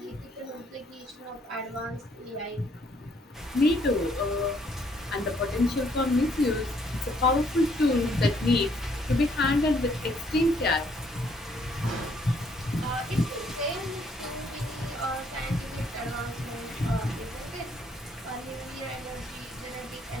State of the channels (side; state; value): both; normal; correlation 0.67